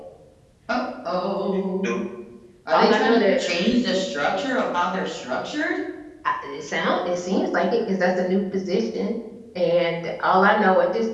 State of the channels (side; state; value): both; identical; correlation 1.00